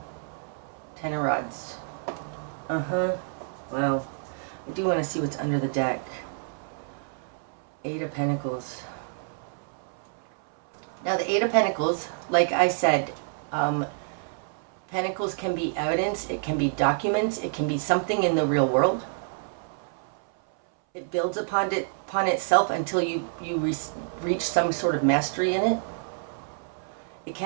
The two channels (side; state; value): left; silent; 59 dB below the other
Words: Ten of Rods. Well, I do want to see what's under the deck. Eight of Pentacles. Now, the Eight of Pentacles, like I said, Pentacles can be evidence, it can be documents, it can be something in the real world. It builds upon itself until you reach some sort of mastery in it. It